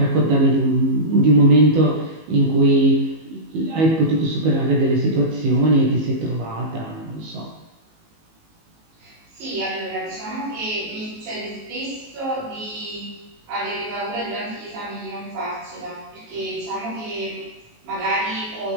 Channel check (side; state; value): left; late; 19 ms